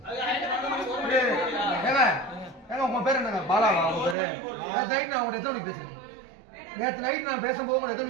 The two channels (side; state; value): left; drops out; at 4.2 s